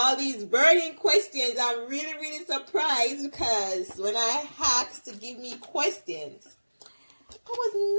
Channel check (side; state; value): both; inverted; correlation -1.00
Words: these burning questions, I'm really surprised because when I asked to give me questions, I was